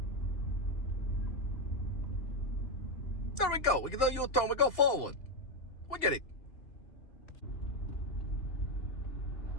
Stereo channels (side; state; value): right; late; 2.7 ms